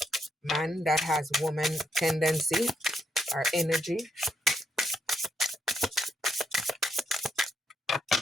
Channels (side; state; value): both; normal; correlation 0.77